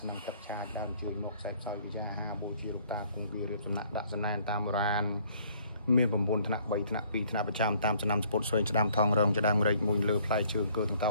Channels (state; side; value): inverted; both; correlation -0.61